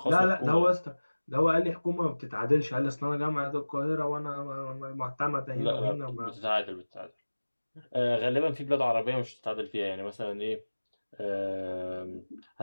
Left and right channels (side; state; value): both; inverted; correlation -1.00